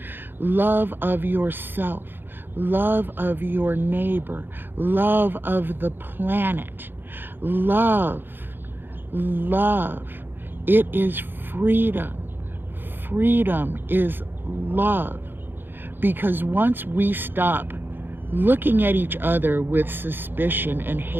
Love of yourself, love of your neighbor, love of the planet. Love. It is freedom. Freedom is love. Because once we stop looking at each other with suspicion and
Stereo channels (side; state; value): left; late; 0.098 ms